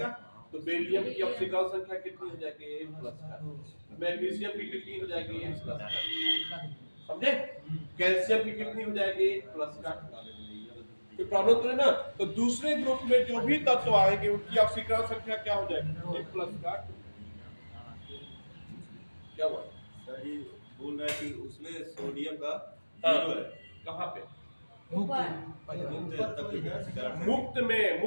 तो बेरिलियम की ऑक्सीकरण संख्या कितनी हो जाएगी प्लस का। मैग्नीशियम की कितनी हो जाएगी प्लस का, समझे? कैल्शियम की कितनी हो जाएगी प्लस का। कोई प्रॉब्लम तो है ना? तो दूसरे ग्रुप में जो भी तत्व आएंगे उनकी ऑक्सीकरण संख्या क्या हो जाएगी प्लस का। क्या हुआ सर? ये बोल रहा है कि उसमें सोडियम का जीरो है। कहाँ पे? मुक्त में,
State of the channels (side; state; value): both; inverted; correlation -1.00